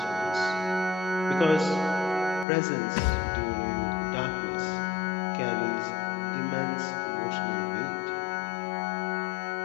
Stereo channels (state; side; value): drops out; right; at 2.5 s